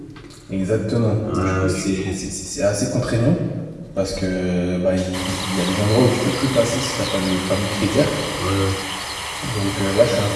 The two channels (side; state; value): both; identical; correlation 1.00